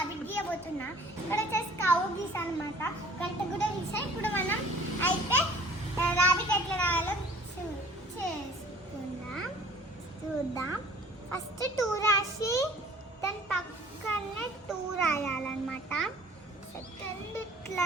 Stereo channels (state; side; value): normal; both; correlation 0.51